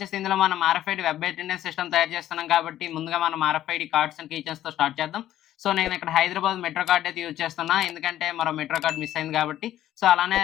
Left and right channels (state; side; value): quieter; right; 12.7 dB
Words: ఇందులో మనం ఆర్ఎఫ్ఐడి వెబ్ అటెండెన్స్ సిస్టమ్ తయారు చేస్తున్నాం కాబట్టి ముందుగా మనం ఆర్ఎఫ్ఐడి కార్డ్స్ అండ్ కీచైన్స్‌తో స్టార్ట్ చేద్దాం. సో నేను ఇక్కడ హైదరాబాద్ మెట్రో కార్డ్ అయితే యూజ్ చేస్తున్నా. ఎందుకంటే మరో మెట్రో కార్డ్ మిస్ అయింది కాబట్టి. సో అలానే